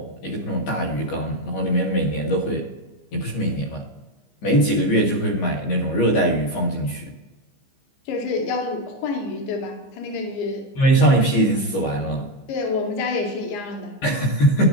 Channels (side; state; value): right; late; 15 ms